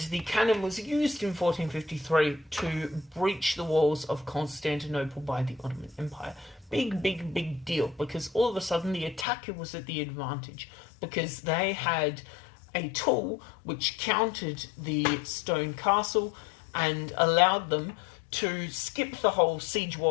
the cannon was used in 1453 to breach the walls of Constantinople by the Ottoman Empire. Big, big, big deal, because all of a sudden the attacker was at the advantage, because they had a tool which countered the stone castle and allowed them to skip the whole siege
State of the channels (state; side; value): drops out; right; at 9.2 s